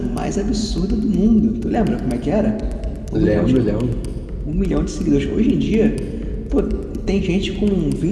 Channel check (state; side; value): identical; both; correlation 1.00